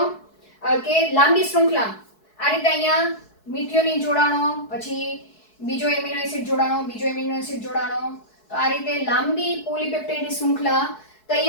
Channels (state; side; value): late; right; 4.7 ms